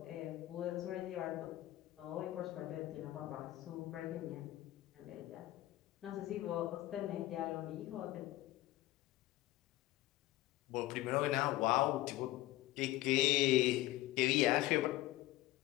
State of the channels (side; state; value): right; quieter; 16.3 dB